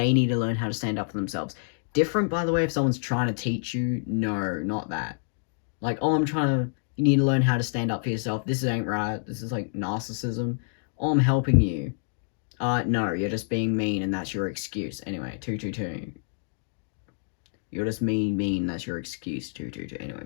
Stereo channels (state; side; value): silent; right; digital silence